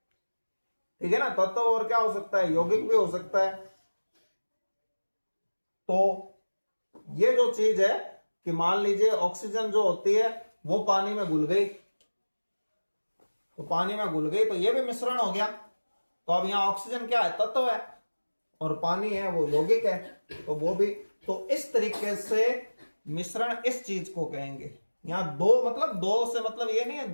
ठीक है ना, तत्व और क्या हो सकता है, यौगिक भी हो सकता है। तो ये जो चीज है कि मान लीजिए ऑक्सीजन जो होती है वो पानी में घुल गई, तो पानी में घुल गई तो ये भी मिश्रण हो गया। तो अब यहां ऑक्सीजन क्या है, तत्व है, और पानी है वो यौगिक है, तो वो भी। तो इस तरीके से मिश्रण इस चीज को कहेंगे। यहां दो मतलब दो से मतलब ये नहीं है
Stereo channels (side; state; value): both; inverted; correlation -1.00